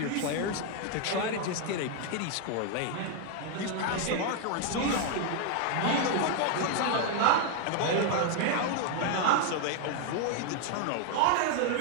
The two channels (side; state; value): both; different; correlation 0.01